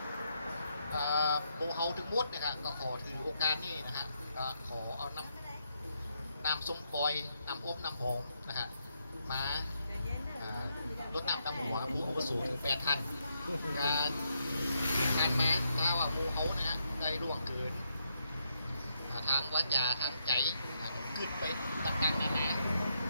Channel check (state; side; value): inverted; both; correlation -0.78